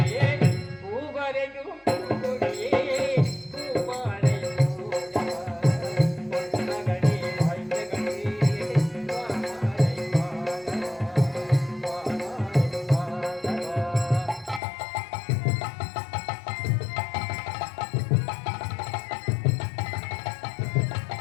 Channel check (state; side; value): drops out; right; at 14.6 s